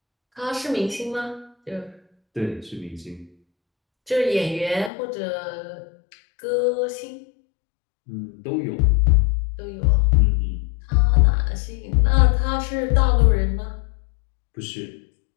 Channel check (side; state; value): right; drops out; at 4.9 s